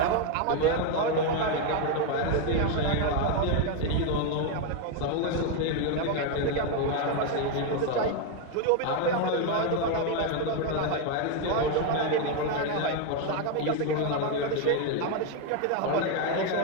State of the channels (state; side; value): different; both; correlation 0.01